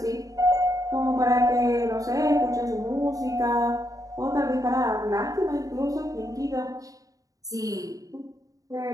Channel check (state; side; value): late; left; 0.17 ms